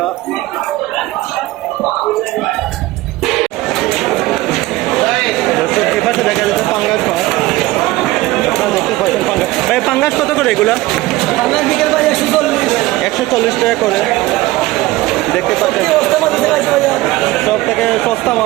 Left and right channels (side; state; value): left; quieter; 18.4 dB